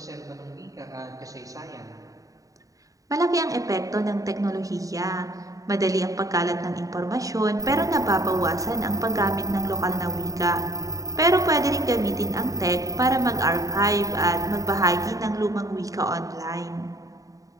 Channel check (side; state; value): left; late; 0.16 ms